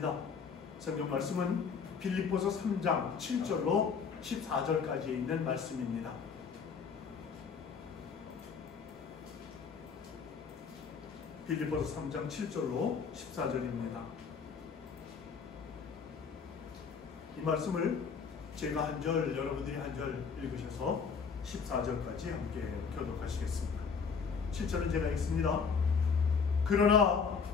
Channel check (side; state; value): right; quieter; 5.9 dB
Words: 성경 말씀은 빌립보서 3장 7절로 14절까지에 있는 말씀입니다. 빌립보서 3장 7절로 14절입니다. 이 말씀을 제가 한 절, 여러분들이 한 절 읽으셔서 14절까지 함께 교독하시겠습니다. 7절은 제가 읽습니다. 그러나